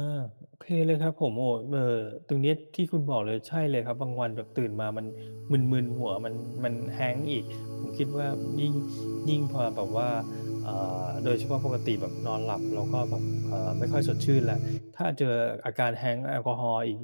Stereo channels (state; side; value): inverted; both; correlation -1.00